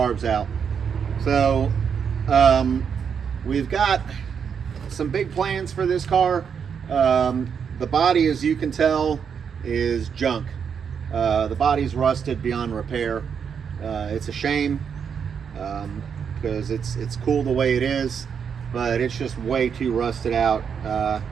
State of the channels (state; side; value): quieter; left; 7.0 dB